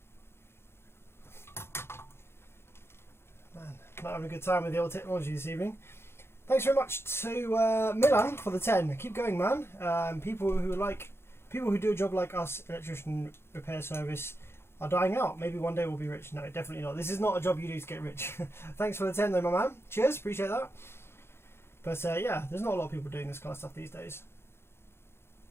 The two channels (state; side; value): late; right; 0.12 ms